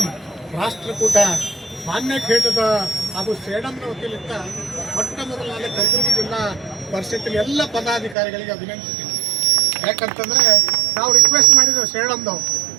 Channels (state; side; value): drops out; left; at 8.2 s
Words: ರಾಷ್ಟ್ರಕೂಟ ಮಾನ್ಯ ಖೇಟದ ಹಾಗೂ ಸೇಡಂನ ವತಿಯಿಂದ ಮೊಟ್ಟ ಮೊದಲನೇ ಕಲಬುರಗಿ ಜಿಲ್ಲಾ ಪರಿಷತ್ತಿನ ಎಲ್ಲ ಪದಾಧಿಕಾರಿಗಳಿಗೆ ಅಭಿನಂದಿಸ್ತೀನಿ. ಯಾಕಂತಂದರೆ ನಾವು ರಿಕ್ವೆಸ್ಟ್ ಮಾಡಿದ್ದೇವೆ ಸೇಡಂದವು,